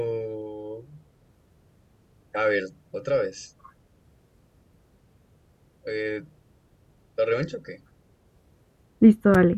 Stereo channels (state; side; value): identical; both; correlation 1.00